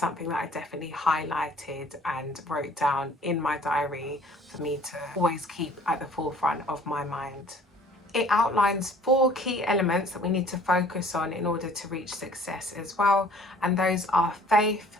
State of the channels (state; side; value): normal; both; correlation 0.54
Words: that I definitely highlighted and wrote down in my diary for me to always keep at the forefront of my mind. It outlines 4 key elements that we need to focus on in order to reach success as well, and those are faith,